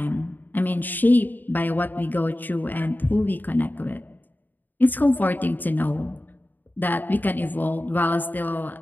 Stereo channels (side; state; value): right; late; 0.088 ms